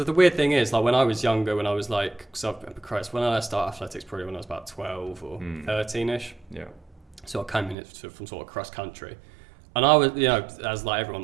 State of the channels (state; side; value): drops out; left; at 7.8 s